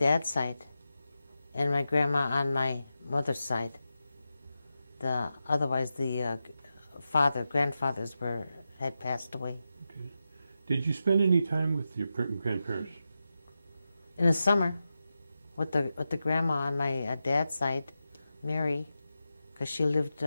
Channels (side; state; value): both; inverted; correlation -0.90